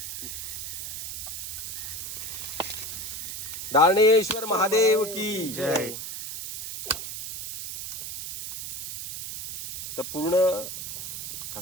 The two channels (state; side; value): noise; right; hiss, 7 dB below the sound